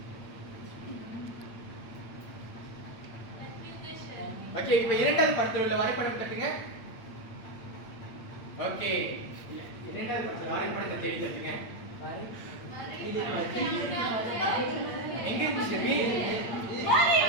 ஓகே, இப்ப இரண்டாவது படத்துல உள்ள வரைபடம் தட்டுங்க. ஓகே, இரண்டாவது படத்துல வரைபடத்தை தேடி தட்டுங்க. எங்க இருக்கு ஷெர்வின்?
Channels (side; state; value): right; late; 8.7 ms